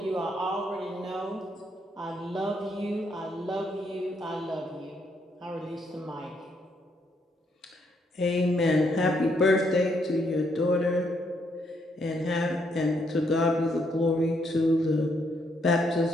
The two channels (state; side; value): normal; both; correlation 0.74